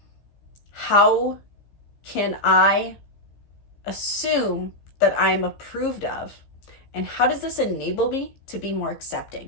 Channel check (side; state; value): right; late; 15 ms